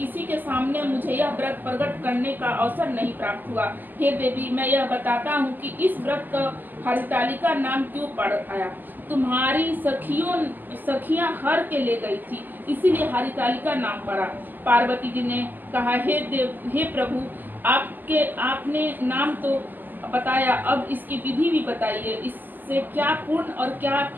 के सामने मुझे यह व्रत प्रकट करने का अवसर नहीं प्राप्त हुआ। हे देवी, मैं यह बताता हूँ कि इस व्रत का हरितालिका नाम क्यों पड़ आया। तुम्हारी सखियां हर के ले गई थी, इसीलिए हरितालिका नाम पड़ा। पार्वती जी ने कहा, हे प्रभु, आपने नाम तो बताया, अब इसकी विधि भी बताइए। इससे क्या पुण्य और क्या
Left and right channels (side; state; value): left; late; 0.087 ms